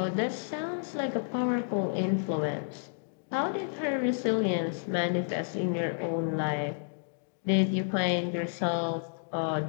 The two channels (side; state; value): right; silent; digital silence